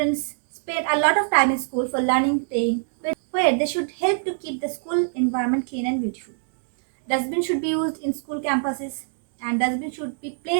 spend a lot of time in school for learning, playing, where they should help to keep the school environment clean and beautiful. Dustbin should be used in school campuses, and dustbin should be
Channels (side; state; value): left; silent; digital silence